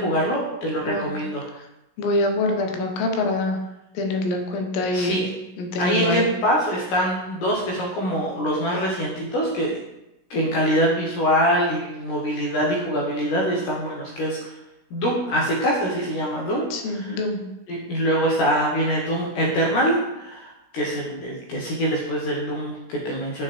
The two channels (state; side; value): late; right; 16 ms